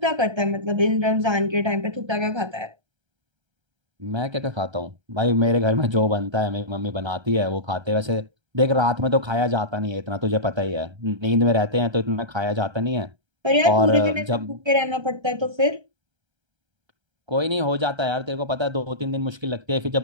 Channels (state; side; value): late; left; 1.3 ms